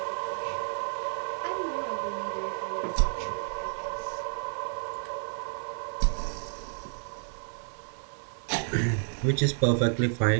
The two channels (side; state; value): left; silent; 57 dB below the other